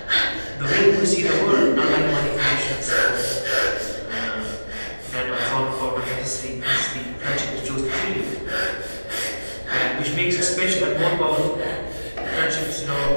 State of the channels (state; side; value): inverted; both; correlation -1.00